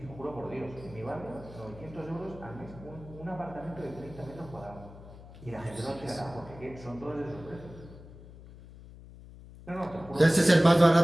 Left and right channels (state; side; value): noise; left; hum, 18 dB below the sound